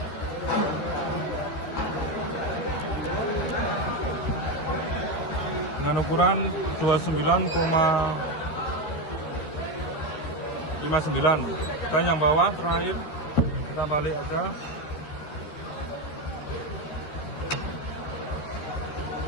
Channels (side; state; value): right; late; 13 ms